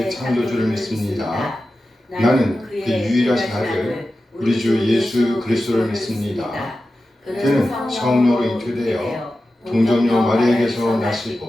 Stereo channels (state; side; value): normal; both; correlation 0.93